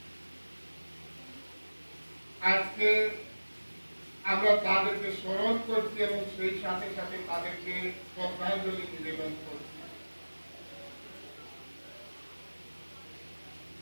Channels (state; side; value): inverted; both; correlation -1.00